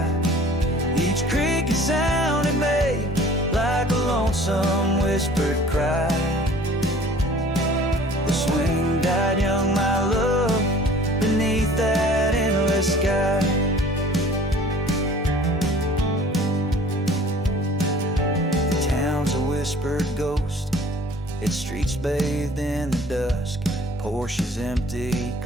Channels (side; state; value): both; normal; correlation 0.49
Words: Each creak and sound it made like a lonesome whispered cry. The swing died young, my love, beneath that endless sky. whispered ghost. Its streets bathed in the dusk, Porsches empty,